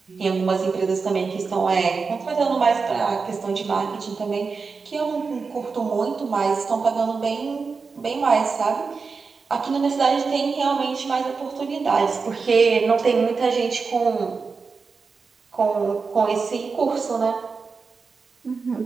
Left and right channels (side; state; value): left; quieter; 4.8 dB